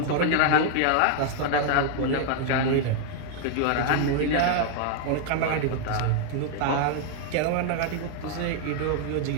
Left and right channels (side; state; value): both; different; correlation 0.00